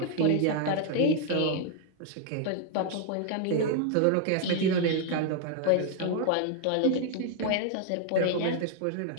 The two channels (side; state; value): both; different; correlation 0.00